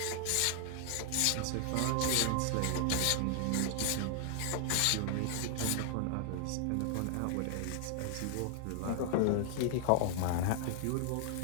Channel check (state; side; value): different; both; correlation 0.00